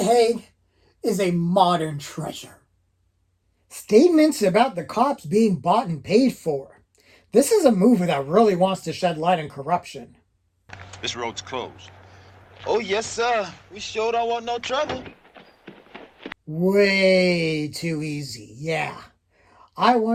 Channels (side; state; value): both; identical; correlation 1.00